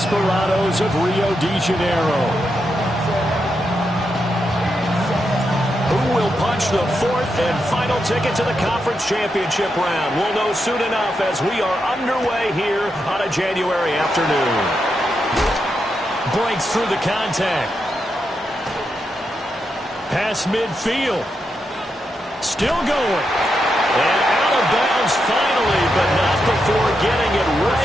of Rio de Janeiro. Who will punch the fourth and final ticket to the conference championship round? We'll know soon enough as we are underway here on a January afternoon. Breaks through the contact. Pass midfield. Still going. And out of bounds finally, but not before getting it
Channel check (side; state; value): both; normal; correlation 0.84